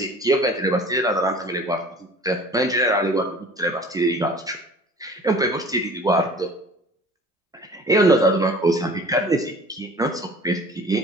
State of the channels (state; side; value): normal; both; correlation 0.45